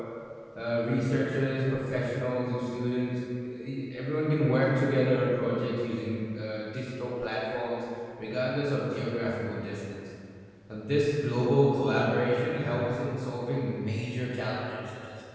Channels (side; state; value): both; identical; correlation 1.00